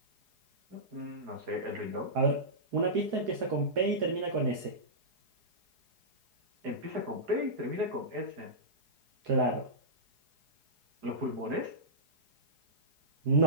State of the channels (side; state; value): left; late; 4.8 ms